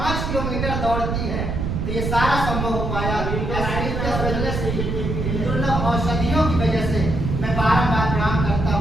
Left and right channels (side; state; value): right; noise; rumble, 2 dB below the sound